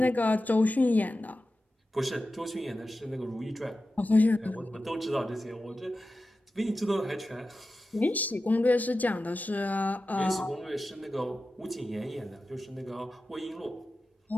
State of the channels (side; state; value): both; normal; correlation 0.93